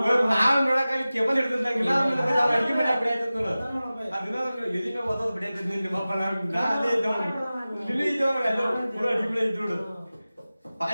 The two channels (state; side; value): inverted; both; correlation -0.96